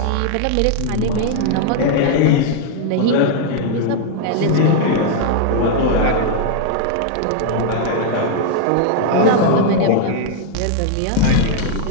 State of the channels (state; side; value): different; both; correlation 0.00